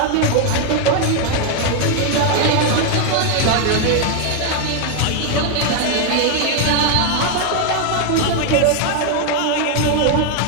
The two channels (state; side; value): different; both; correlation 0.01